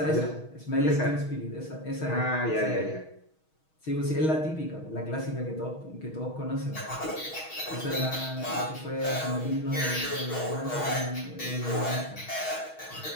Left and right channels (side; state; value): right; late; 6.3 ms